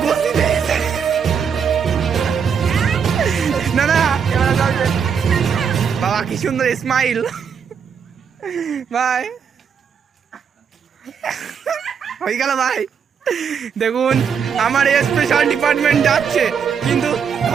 বসি না না, বাবা কি সুন্দর স্মাইল। ভাই হয়ে গেল ভাই। দেখুন আমার স্পেশাল ডিপার্টমেন্ট যাচ্ছে, কিন্তু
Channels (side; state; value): left; quieter; 6.9 dB